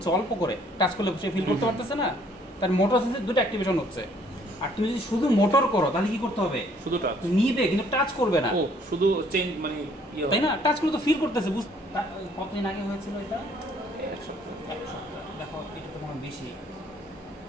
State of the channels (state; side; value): normal; both; correlation 0.62